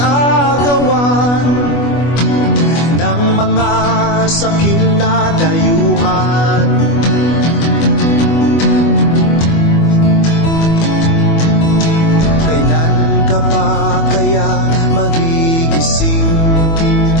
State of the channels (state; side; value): late; right; 24 ms